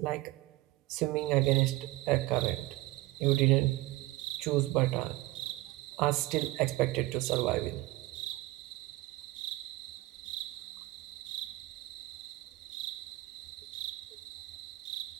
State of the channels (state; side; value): quieter; left; 19.2 dB